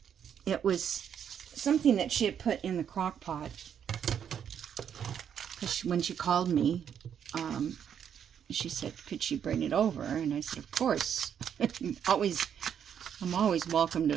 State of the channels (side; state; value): left; quieter; 8.5 dB